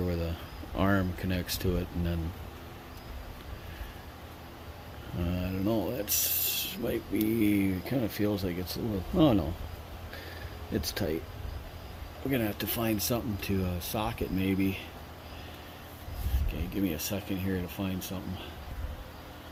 where the arm connects to it, and then I don't know, that's might be, kind of feels like it's a little, oh no, it's tight. We're gonna have to find something to sock it maybe. Okay, give me a second here to find something.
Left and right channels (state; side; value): identical; both; correlation 1.00